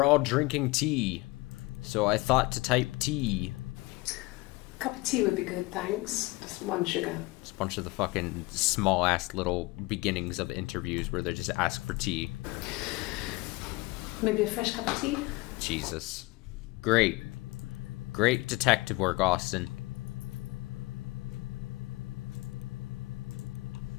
all drinking tea, so I thought to type tea. A cup of tea would be good, thanks. Just one sugar. It's a bunch of the fucking small-ass little beginnings of interviews where they just ask for tea. Maybe a fresh cup of tea? Jesus. Great. Great detective work, Austin.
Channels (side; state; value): right; quieter; 22.6 dB